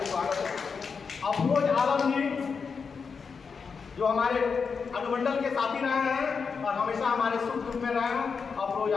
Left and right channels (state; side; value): quieter; right; 5.5 dB